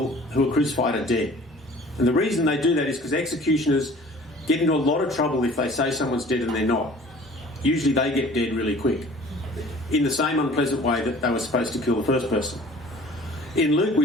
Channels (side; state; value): both; normal; correlation 0.48